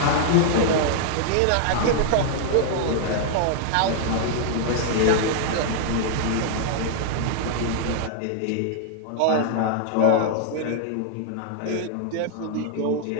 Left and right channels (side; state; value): both; different; correlation -0.01